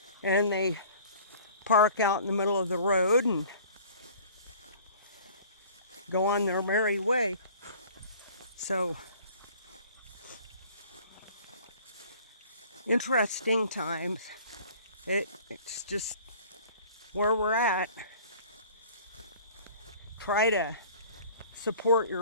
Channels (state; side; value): inverted; both; correlation -0.48